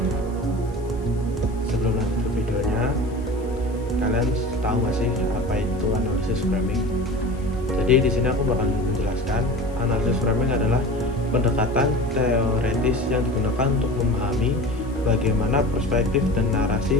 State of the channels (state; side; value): noise; left; hiss, 28 dB below the sound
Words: Sebelum lanjut ke videonya, kalian tahu nggak sih apa itu analisis framing? Jadi di sini aku bakal menjelaskan analisis framing adalah pendekatan teoretis yang digunakan untuk memahami bagaimana perspektif dan